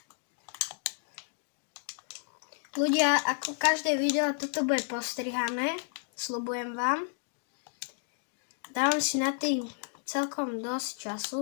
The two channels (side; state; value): right; silent; 57 dB below the other